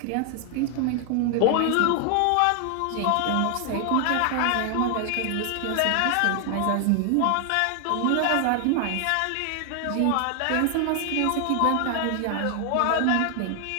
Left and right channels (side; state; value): both; different; correlation 0.00